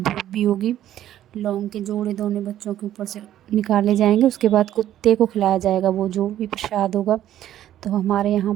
भी होगी। लौंग के जोड़े दोनों बच्चों के ऊपर से निकाले जाएंगे, उसके बाद कुत्ते को खिलाया जाएगा वो जो भी प्रसाद होगा। तो हमारे यहाँ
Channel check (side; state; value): left; quieter; 12.1 dB